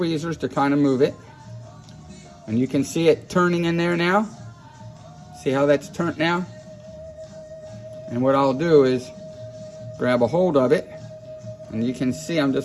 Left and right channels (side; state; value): both; identical; correlation 1.00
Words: to kind of move it. And you can see it turning in there now. See how that's turned now? And what I'll do is grab a hold of it. And you can see I'm